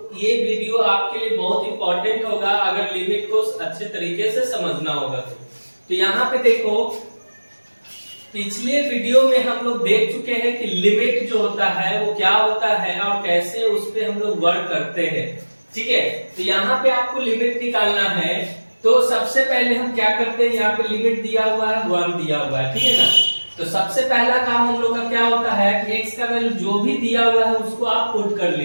ये वीडियो आपके लिए बहुत इंपॉर्टेंट होगा अगर लिमिट को अच्छे तरीके से समझना होगा तो यहाँ पे देखो, पिछले वीडियो में हम लोग देख चुके हैं कि लिमिट जो होता है वो क्या होता है और कैसे उस पे हम लोग वर्क करते हैं। ठीक है, तो यहाँ पे आपको लिमिट निकालना है। तो सबसे पहले हम क्या करते हैं, यहाँ पे लिमिट दिया हुआ है 1 दिया हुआ है, ठीक है ना। तो सबसे पहला काम हम लोग का क्या होता है कि x का वैल्यू जो भी दिया हुआ है उसको आप पुट कर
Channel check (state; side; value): inverted; both; correlation -1.00